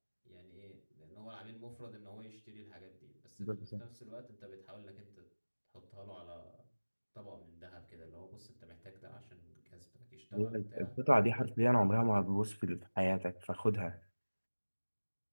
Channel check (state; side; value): inverted; both; correlation -1.00